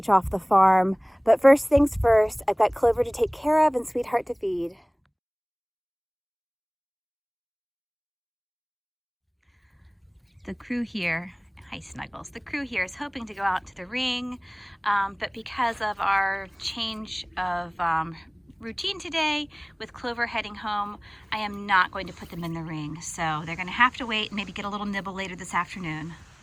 off the farm. But first things first, I've got Clover to take care of and Sweetheart to feed. The crew here, hi Snuggles, the crew here is hoping to go out to the ring, but because of our change of routine today with Clover heading home, I am not going to put them in the ring. So they're going to have to wait and maybe get a little nibble later this afternoon.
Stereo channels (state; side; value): identical; both; correlation 1.00